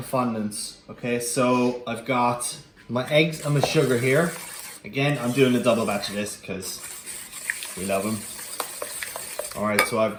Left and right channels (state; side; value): identical; both; correlation 1.00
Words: fondants. Okay, so I've got my eggs and my sugar here. Again, I'm doing a double batch of this because we love them. All right, so I've